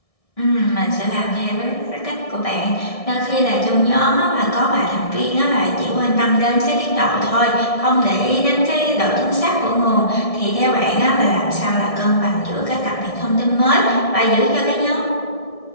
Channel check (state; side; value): late; right; 1.6 ms